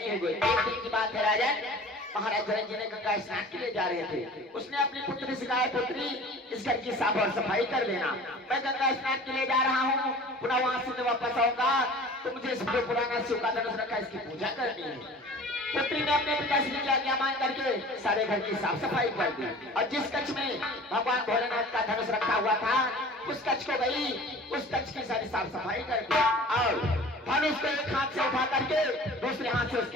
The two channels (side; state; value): both; normal; correlation 0.43